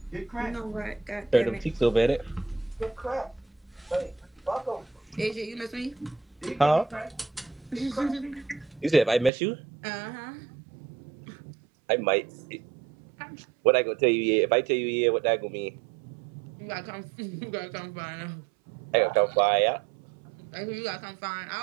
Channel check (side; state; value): left; drops out; at 9.3 s